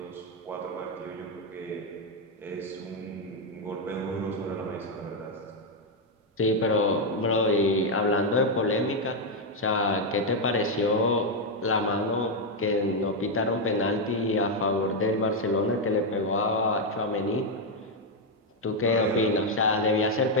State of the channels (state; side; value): normal; both; correlation 0.02